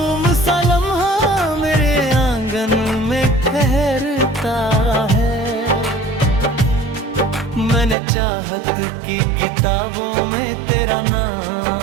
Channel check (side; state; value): left; drops out; at 8.0 s